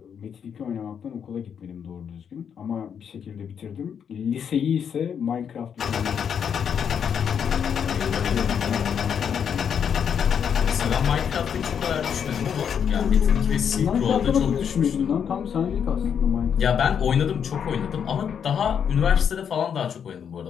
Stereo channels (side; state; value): right; quieter; 7.7 dB